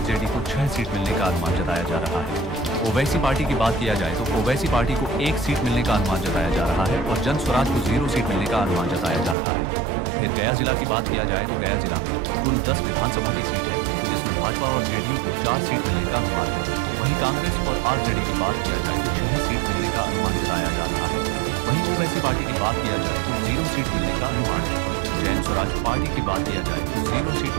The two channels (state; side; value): drops out; left; at 9.3 s